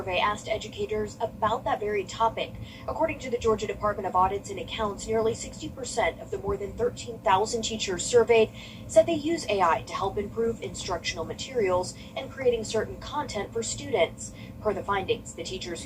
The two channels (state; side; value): identical; both; correlation 1.00